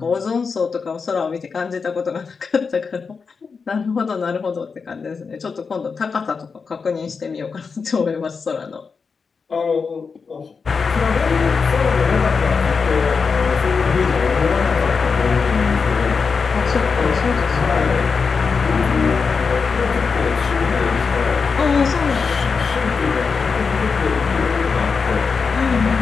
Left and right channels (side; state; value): right; quieter; 5.2 dB